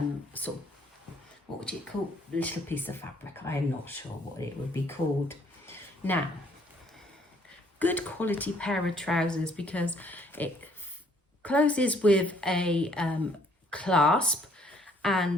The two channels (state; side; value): normal; both; correlation 0.64